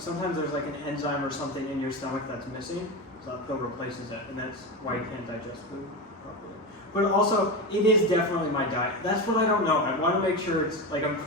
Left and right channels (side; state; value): both; normal; correlation 0.19